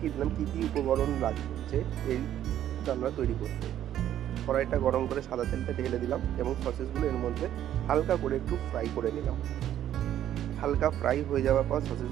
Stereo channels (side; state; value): left; quieter; 11.4 dB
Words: দিলাম কী কী উপকরণ লাগছে এই রান্না তৈরি করতে। কড়াইটা গরম করে সাদা তেলটা ঢেলে দিলাম এবং সসেসগুলো এর মধ্যে হালকা করে একটু ফ্রাই করে নিলাম। হালকা ফ্রাই হয়ে যাওয়ার পর